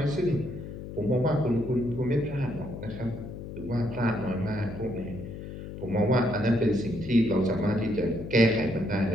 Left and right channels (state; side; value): noise; left; hum, 10 dB below the sound